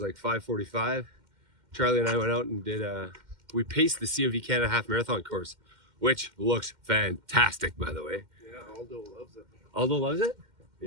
like 5:45. Charlie and I went out and did. We paced the COV Canada Half Marathon course, which looks fantastic, by the way. Yeah, Aldo loves it. Aldo loves it.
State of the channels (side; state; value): left; late; 2.1 ms